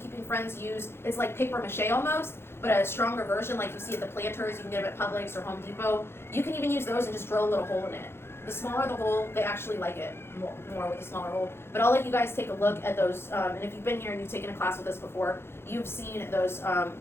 friends use, it's like paper mache almost, but a stronger version like you see at the planters, you can get them at Publix or Home Depot. You can even use those and just drill a little hole in it. The smaller the hole, they actually like it more with the smaller hole. But I'll let you guys take a look at those, and if you've been here and you've taken a class with us before, you've seen those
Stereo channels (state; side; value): late; right; 0.12 ms